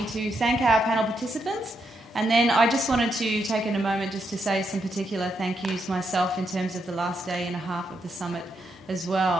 to thank our panel participants, and then I just wanted to take in a moment just to say some particular thank yous myself in terms of the last day and a half of the summit as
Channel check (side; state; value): both; normal; correlation 0.80